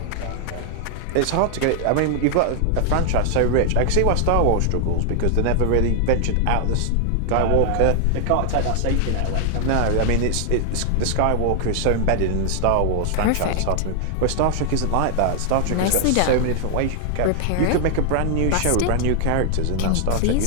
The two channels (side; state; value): both; different; correlation 0.00